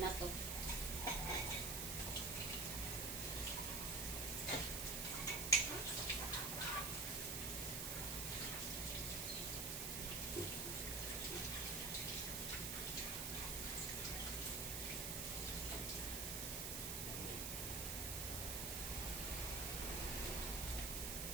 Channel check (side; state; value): right; noise; hiss, 1 dB below the sound